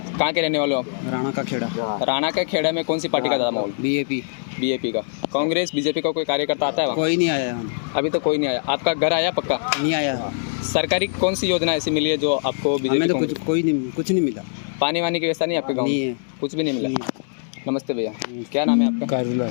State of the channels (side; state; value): right; silent; digital silence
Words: के रहने वाले हो आप? राणा का खेड़ा। राणा के खेड़ा में कौन सी पार्टी का ज़्यादा माहौल? बीजेपी। बीजेपी का। कांग्रेस बीजेपी का कोई कार्यकर्ता आता है वहाँ? कोई नहीं आया यहाँ, अभी तो कोई नहीं आया। आपका घर आया पक्का? नहीं आया। सरकारी कौन सी योजना ऐसी मिली है जो आपको हमें बीजेपी तो कुछ नहीं मिला। पानी वानी की व्यवस्था नहीं है आपके गाँव नहीं में? है। कुछ भी नहीं मिला। नमस्ते भैया। क्या नाम है आपका? कारुला